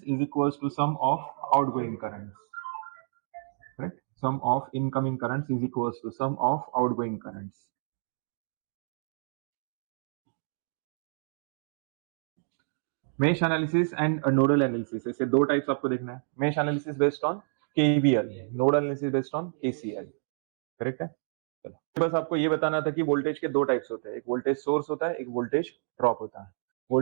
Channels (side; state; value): left; silent; digital silence